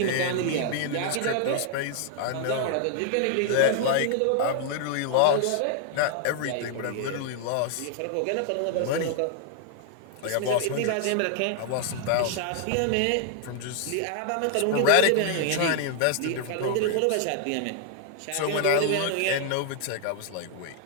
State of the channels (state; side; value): different; both; correlation 0.00